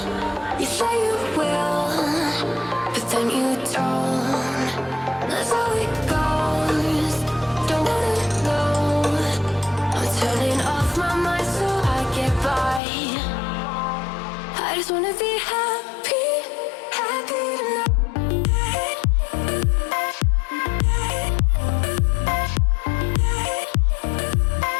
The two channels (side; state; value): right; drops out; at 12.8 s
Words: You say you will, but then you don't. That's how it goes. Don't wanna know. I'm turning off my mind so I get by. I just wanna be happy, happy tonight.